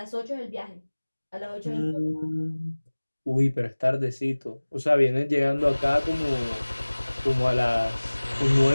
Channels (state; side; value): inverted; both; correlation -1.00